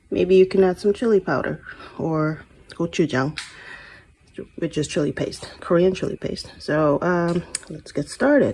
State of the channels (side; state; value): both; identical; correlation 1.00